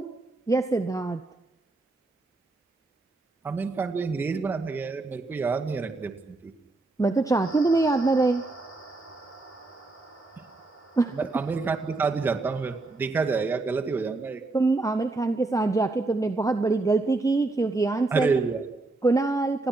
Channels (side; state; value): left; quieter; 3.3 dB